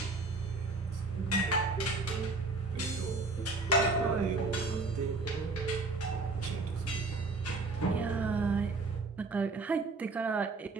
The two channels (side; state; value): left; quieter; 3.5 dB